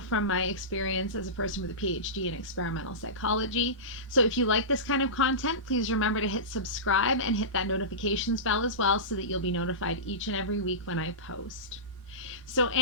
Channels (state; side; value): normal; both; correlation -0.19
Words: my experience as a person with a PhD in experimental psychology. So if you like this kind of content, please remember to hit subscribe and hit that notifications bell as well so that you'll be notified each and every week when I post. So